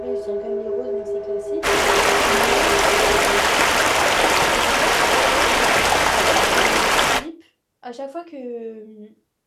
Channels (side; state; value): both; identical; correlation 1.00